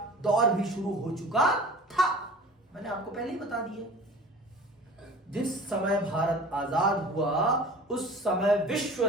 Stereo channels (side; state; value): both; normal; correlation 0.42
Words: दौर भी शुरू हो चुका था। मैंने आपको पहले ही बता दिया, जिस समय भारत आजाद हुआ उस समय विश्व